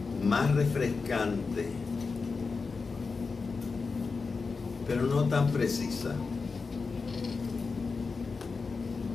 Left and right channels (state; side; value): quieter; right; 4.6 dB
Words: más refrescante, pero no tan precisa.